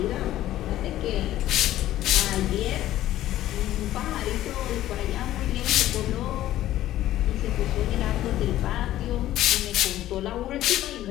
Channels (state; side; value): quieter; right; 13.8 dB